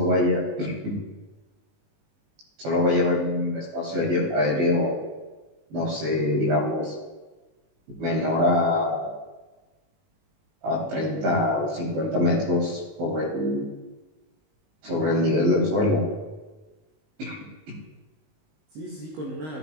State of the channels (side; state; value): left; late; 19 ms